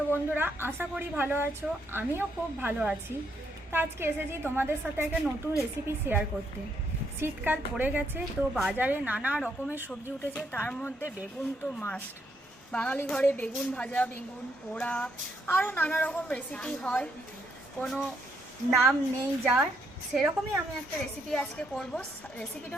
বন্ধুরা? আশা করি ভালো আছো। আমিও খুব ভালো আছি। তো আজকে এসেছি তোমাদের সাথে একটা নতুন রেসিপি শেয়ার করতে। শীতকাল পড়ে গেছে, তো বাজারে নানা রকমের সবজি উঠেছে, তার মধ্যে বেগুন তো মাস্ট। বাঙালি ঘরে বেগুন ভাজা, বেগুন পোড়া, আরও নানা রকম রেসিপি হয়, কোনো নাম নেই যার। সেরকমই আমি একটা রেসিপি আজকে করব। রেসিপিটা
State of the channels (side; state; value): both; normal; correlation 0.75